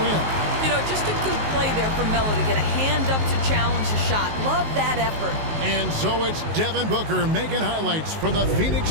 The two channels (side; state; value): left; late; 19 ms